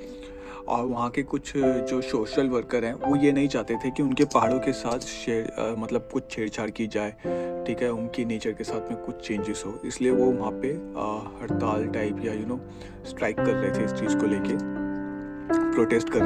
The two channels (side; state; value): both; identical; correlation 1.00